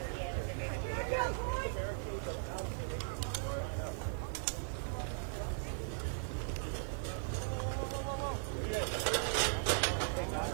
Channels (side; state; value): left; silent; digital silence